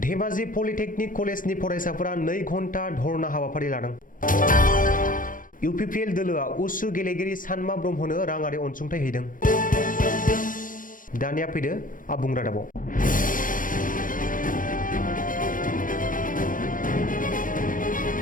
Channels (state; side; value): late; right; 0.39 ms